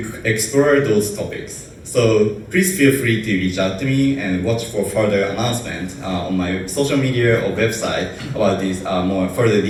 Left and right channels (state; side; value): identical; both; correlation 1.00